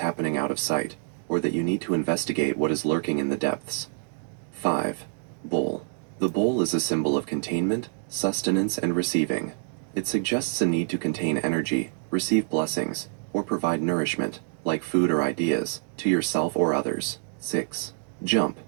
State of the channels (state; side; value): silent; left; digital silence